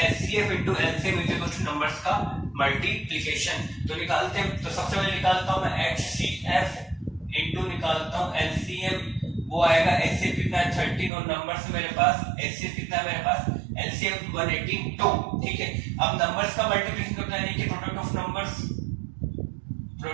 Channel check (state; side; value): drops out; left; at 11.1 s